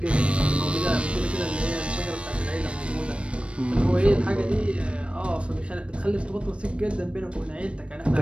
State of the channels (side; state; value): left; late; 0.060 ms